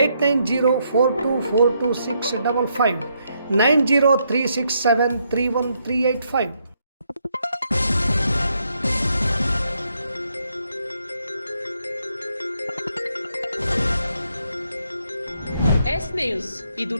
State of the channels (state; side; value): inverted; both; correlation -0.76